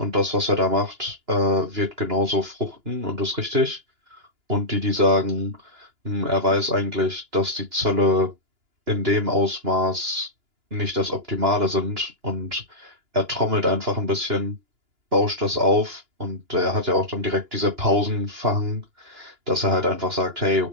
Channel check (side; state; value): left; late; 2.9 ms